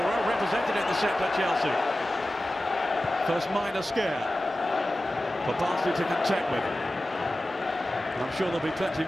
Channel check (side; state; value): both; normal; correlation 0.95